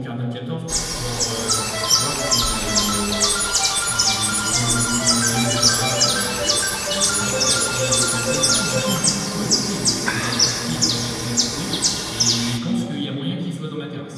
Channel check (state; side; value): identical; both; correlation 1.00